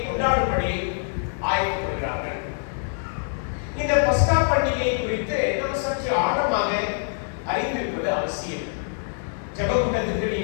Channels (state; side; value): silent; right; digital silence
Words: ஆயத்தப்படுகிறார்கள். இந்த பஸ்கா பண்டிகை குறித்து நாம் சற்று ஆழமாக அறிந்திருப்பது அவசியம். ஜெபக்கூட்டத்துக்கு